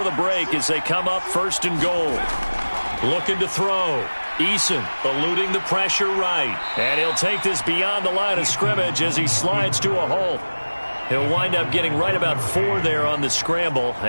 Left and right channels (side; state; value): both; inverted; correlation -1.00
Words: the break as they come up 1st and goal. Looking to throw. Eason eluding the pressure right. And he'll take this beyond the line of scrimmage as he slides to a hole. He'll wind up getting right about 4 there on the scramble,